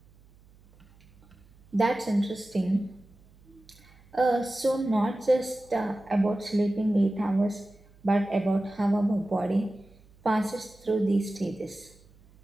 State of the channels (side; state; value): right; noise; hum, 28 dB below the sound